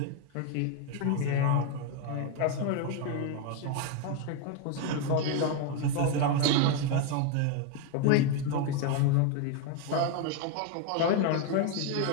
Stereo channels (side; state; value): both; different; correlation 0.01